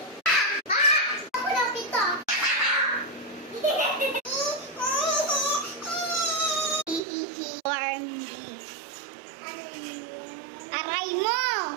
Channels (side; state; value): left; drops out; at 7.0 s